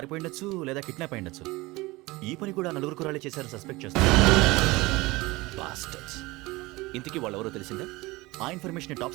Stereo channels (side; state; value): left; quieter; 21.5 dB